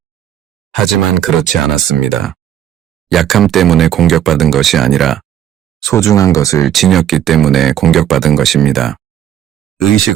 하지만 그렇지 않았습니다. 약함 때문에 공격받은 것이 아니라 소중한 것을 지녔기 때문에 공격받은 것입니다. 의식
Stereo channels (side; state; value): left; quieter; 10.8 dB